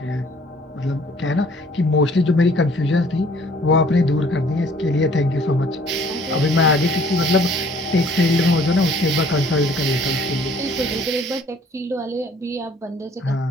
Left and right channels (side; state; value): both; normal; correlation 0.57